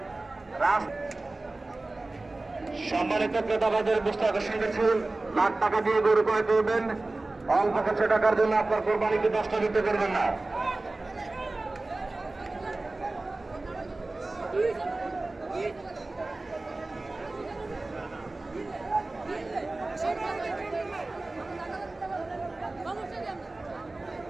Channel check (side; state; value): left; quieter; 3.1 dB